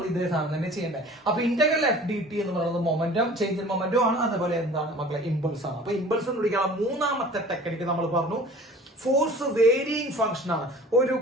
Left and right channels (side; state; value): both; normal; correlation 0.45